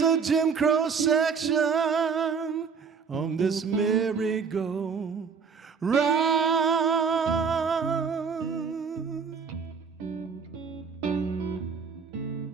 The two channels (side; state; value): left; quieter; 5.8 dB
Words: a Jim Crow section on this merry-go-round?